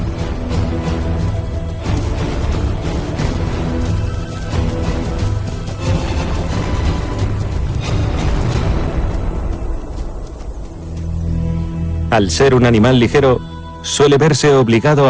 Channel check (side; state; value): both; identical; correlation 1.00